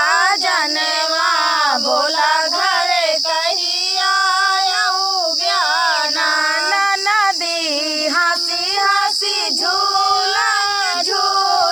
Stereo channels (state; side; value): noise; right; hiss, 26 dB below the sound